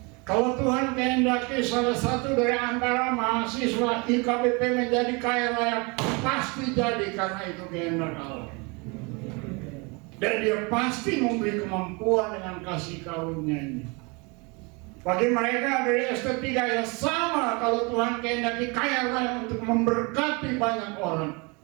Kalau Tuhan kehendaki salah satu dari antara mahasiswa IKBP menjadi kaya raya, pasti jadi karena itu kehendak Allah. Dan dia pasti memberi kemampuan dengan kasih karunia-Nya. Bagi mereka dari ST3 ya sama, kalau Tuhan kehendaki kaya raya untuk memberkati banyak orang,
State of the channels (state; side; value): quieter; left; 29.5 dB